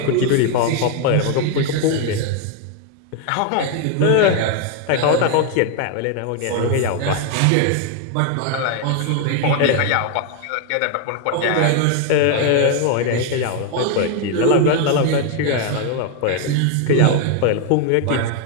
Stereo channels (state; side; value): different; both; correlation 0.01